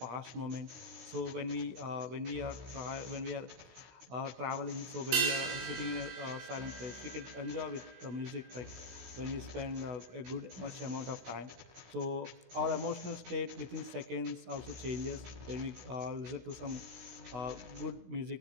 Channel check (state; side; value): late; left; 16 ms